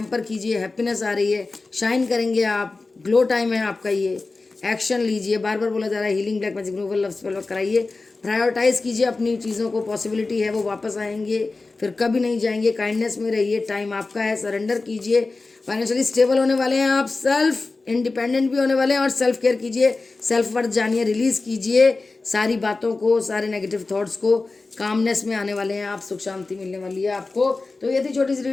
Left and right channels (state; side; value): quieter; right; 3.6 dB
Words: कीजिए, हैप्पीनेस आ रही है, शाइन करेंगे आप, ग्लो टाइम है आपका ये। एक्शन लीजिए, बार बार बोला जा रहा है healing black magic removal love spell work कराइए। प्रायोरिटाइज कीजिए अपनी चीज़ों को, पॉसिबिलिटी है वो वापस आएंगे, फिर कभी नहीं जाएंगे। काइंडनेस में रहिए, टाइम आपका है, सरेंडर कीजिए। फाइनेंशियली स्टेबल होने वाले हैं आप, सेल्फ इंडिपेंडेंट भी होने वाले हैं और सेल्फ केयर कीजिए, सेल्फ वर्थ जानिए, रिलीज़ कीजिए सारी बातों को, सारे नेगेटिव थॉट्स को। कामनेस में आने वाले हैं आप, सुख शांति मिलने वाली है आपको। तो ये थी छोटी सी